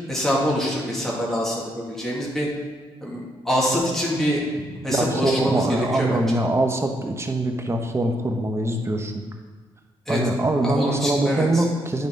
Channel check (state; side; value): normal; both; correlation 0.76